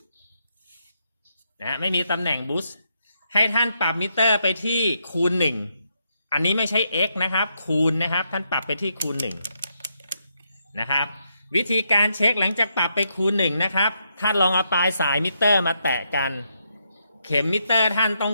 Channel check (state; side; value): inverted; both; correlation -0.79